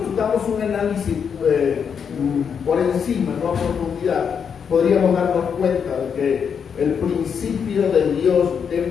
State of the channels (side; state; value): right; quieter; 7.0 dB